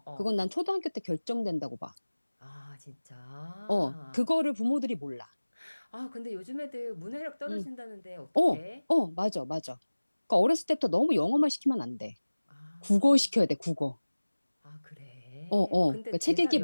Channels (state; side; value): inverted; both; correlation -1.00